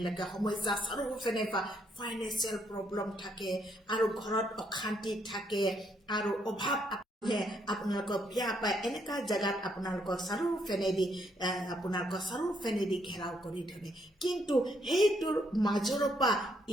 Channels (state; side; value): normal; both; correlation 0.73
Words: সমস্যা চাৰিওফালে বা ফাইনেন্সিয়েল প্ৰব্লেম থাকে আৰু ঘৰত অশান্তি থাকে আৰু অভাৱ আপোনালোকক বিয়া পায় এনেকুৱা জেগাত আপোনালোকক চাৰিওফালেদি ঘেৰাও কৰি ধৰে কিন্তু সেইটোৰ মাজৰ পৰা